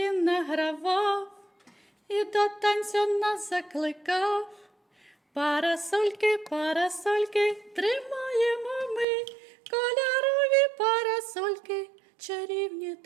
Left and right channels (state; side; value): drops out; left; at 9.1 s